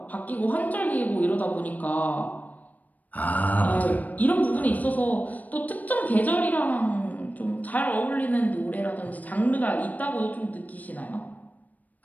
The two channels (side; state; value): right; late; 0.077 ms